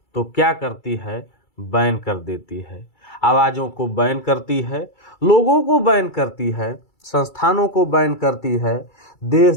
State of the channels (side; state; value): right; late; 2.3 ms